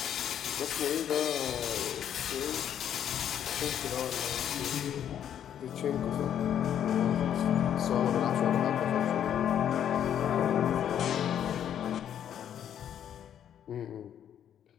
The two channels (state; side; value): quieter; right; 9.7 dB